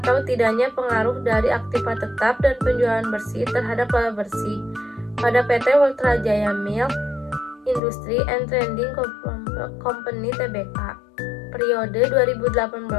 tidaknya pengaruh dari aktiva tetap dan penjualan bersih terhadap laba bersih pada PT Ultrajaya Milk Industry and Trading Company Tbk periode 2018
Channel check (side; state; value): right; drops out; at 7.8 s